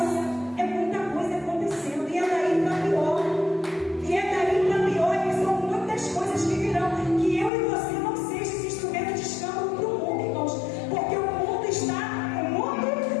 é muita coisa acontecendo, e é daí para pior. E é daí para pior, e são muitas coisas que virão, que eu e você não sejam esse instrumento de escândalo para o mundo, irmãos, porque o mundo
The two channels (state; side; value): drops out; right; at 7.5 s